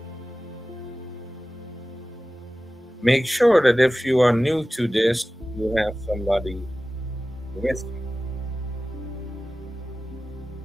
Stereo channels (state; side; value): normal; both; correlation 0.96